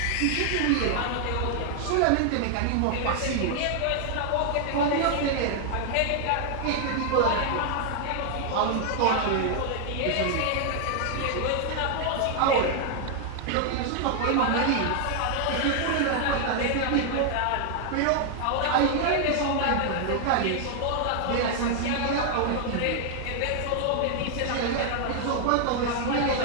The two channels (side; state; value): both; different; correlation 0.00